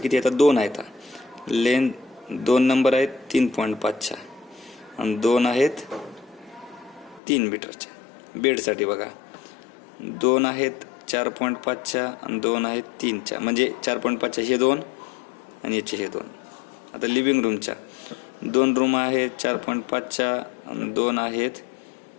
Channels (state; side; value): drops out; right; at 7.2 s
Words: येतात, 2 आहेत. लेंथ 2 नंबर आहेत 3.5च्या आणि 2 आहेत 3 मीटरच्या. बेडसाठी बघा 2 आहेत 4.5च्या आणि 2 आहेत 3च्या, म्हणजे 4.5च्या हे 2 आणि याचे हे 2. आता लिव्हिंग रूमच्या 2 रूम आहेत 4.5च्या आणि 2 आहेत